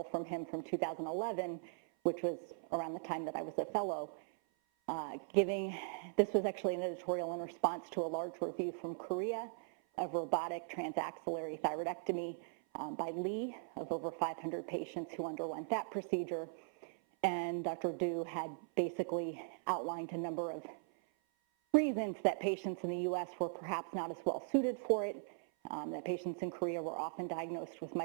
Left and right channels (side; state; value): left; silent; 51 dB below the other